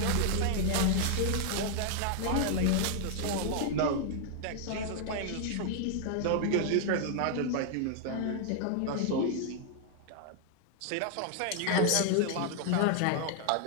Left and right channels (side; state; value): both; different; correlation 0.00